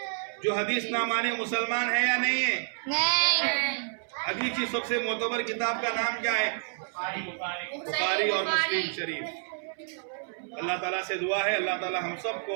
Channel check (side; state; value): left; silent; 59 dB below the other